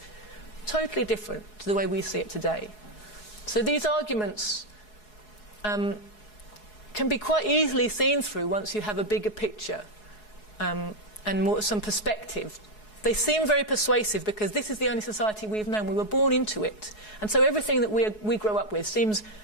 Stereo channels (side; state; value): right; late; 4.7 ms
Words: Totally different to the way we see it today. So these arguments can be quite easily seen through once you have a bigger picture and some perspective. They seem very persuasive because this is the only society we've known. We were born into it. And so everything that we grow up with seems